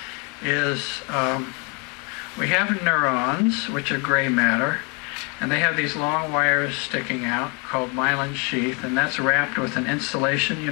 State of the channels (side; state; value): right; quieter; 32.9 dB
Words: is we have neurons, which are gray matter, and they have these long wires sticking out called myelin sheath, and that's wrapped with an insulation. You